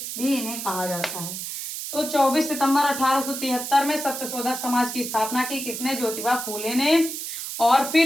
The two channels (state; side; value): noise; right; hiss, 6 dB below the sound